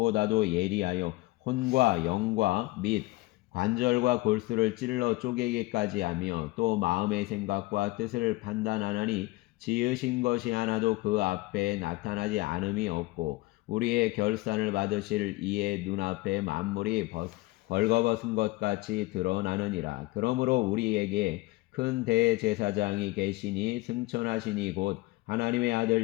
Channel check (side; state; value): right; quieter; 20.8 dB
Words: 예리하여 혼과 영과 및 관절과 골수를 찔러 쪼개기까지 하며 또 마음의 생각과 뜻을 판단하나니 지으신 것이 하나도 그 앞에 나타나지 않음이 없고 우리의 결산을 받으실 이의 눈앞에 만물이 벌거벗은 것 같이 드러나느니라. 그러므로 우리에게 큰 대제사장이 계시니 승천하시니 곧 하나님의